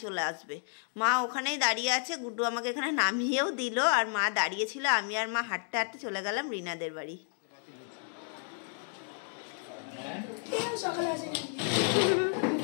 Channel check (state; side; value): silent; right; 57 dB below the other